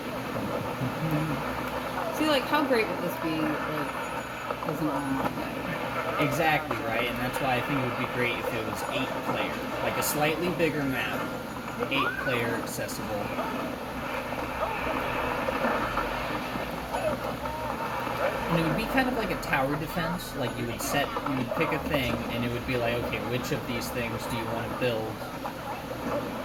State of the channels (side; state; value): both; identical; correlation 1.00